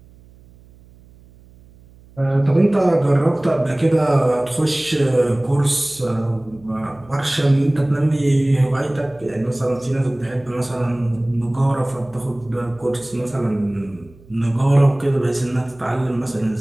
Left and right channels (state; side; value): noise; right; hum, 25 dB below the sound